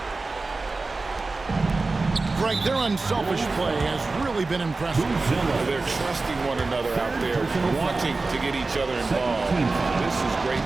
Greg, their unselfish play has really been impressive. They're trusting one another out there, wanting to get each other involved. This is great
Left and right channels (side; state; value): left; quieter; 3.6 dB